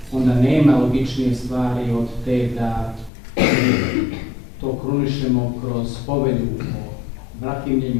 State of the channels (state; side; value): drops out; right; at 3.1 s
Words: onda nema logičnije stvari od te da to krunišemo kroz povelju o